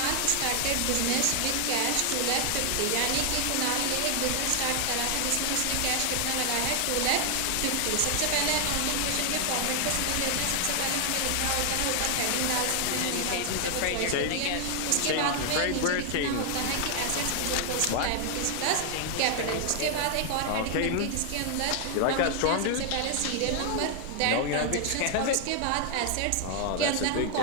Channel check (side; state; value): both; different; correlation 0.00